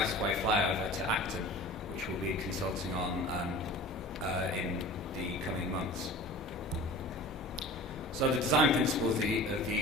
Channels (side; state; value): both; normal; correlation 0.39